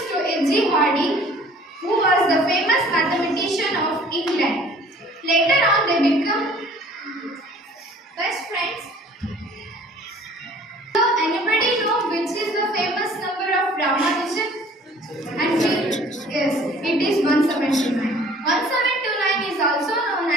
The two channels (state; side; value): normal; both; correlation 0.52